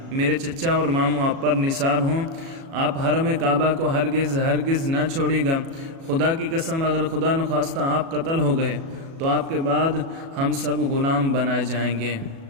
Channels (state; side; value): late; left; 37 ms